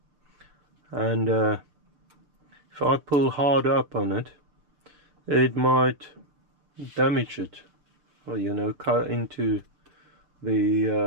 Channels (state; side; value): late; left; 6.6 ms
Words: and if I pull hard up on it, it might damage it, or, you know, cut into the